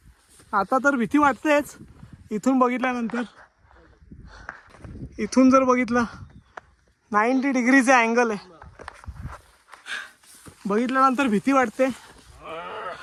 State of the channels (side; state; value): both; identical; correlation 1.00